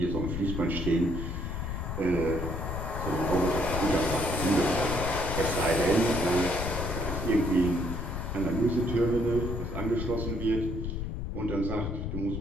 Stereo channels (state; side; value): noise; left; rumble, 3 dB below the sound